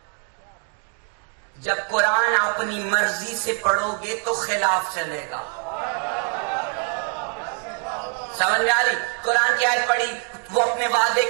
جب قرآن اپنی مرضی سے پڑھو گے تو خلاف چلے گا. سمجھ میں آ رہی؟ قرآن کی آیت پڑھی، وہ اپنے وعدے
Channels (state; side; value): quieter; left; 37.7 dB